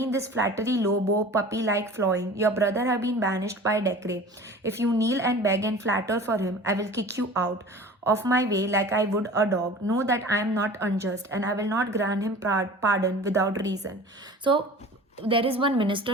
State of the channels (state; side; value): normal; both; correlation 0.40